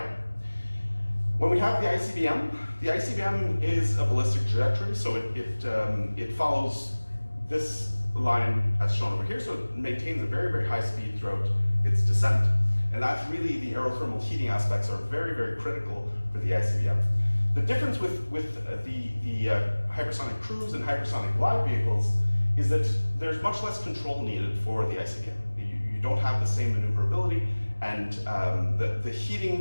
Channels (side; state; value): both; inverted; correlation -1.00